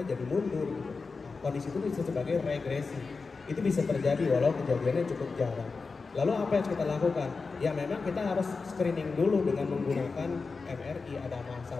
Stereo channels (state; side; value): quieter; right; 4.4 dB